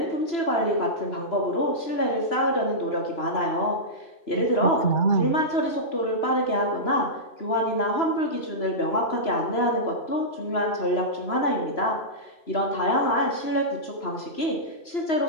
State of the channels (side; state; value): right; late; 3.0 ms